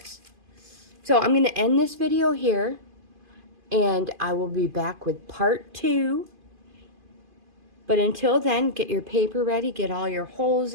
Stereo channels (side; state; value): left; late; 2.5 ms